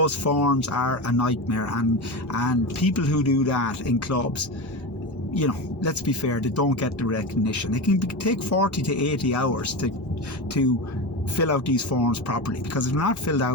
forms are a nightmare, and people who do that in clubs, let's be fair, they don't get the recognition. It can take 40 to 80 hours to fill out these forms properly, because if they're not filled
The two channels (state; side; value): late; right; 1.6 ms